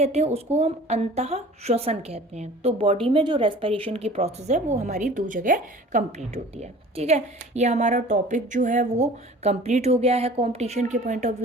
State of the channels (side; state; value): both; normal; correlation 0.45